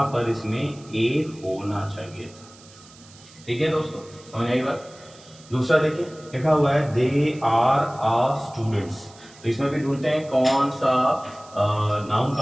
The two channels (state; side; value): noise; right; hiss, 23 dB below the sound